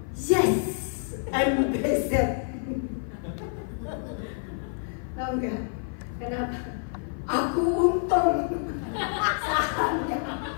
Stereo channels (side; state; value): right; silent; 55 dB below the other